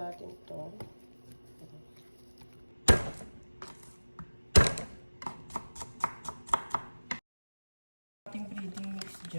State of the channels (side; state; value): both; inverted; correlation -1.00